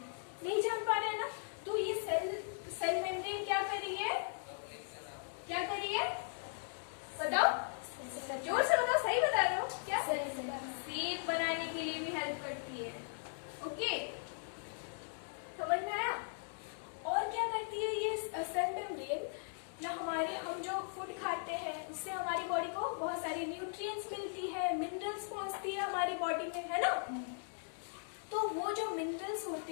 नहीं जान पा रहे हैं ना। तो ये सेल मेम्ब्रेन क्या कर रही है, क्या कर रही है, बताओ, जोर से बताओ, सही बता रहे हो क्या? शेप बनाने के लिए भी हेल्प करती है। ओके, समझ में आया? और क्या करती है ये सेल मेम्ब्रेन ना, हम जो फूड खाते हैं उससे हमारी बॉडी को बहुत सारी न्यूट्रिएंट्स मिलती है, मिनरल्स पहुंचती है हमारी बॉडी में, है ना। तो वो जो मिनरल्स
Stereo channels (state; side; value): silent; right; digital silence